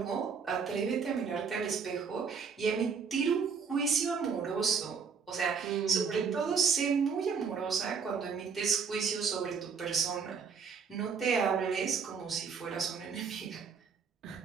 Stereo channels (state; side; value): quieter; left; 6.0 dB